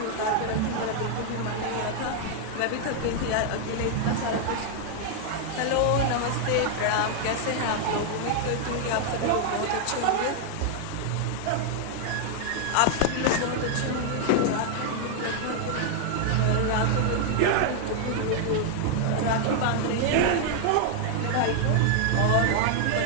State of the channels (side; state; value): both; different; correlation 0.00